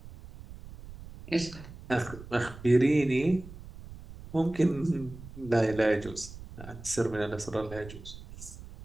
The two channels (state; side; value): noise; right; rumble, 15 dB below the sound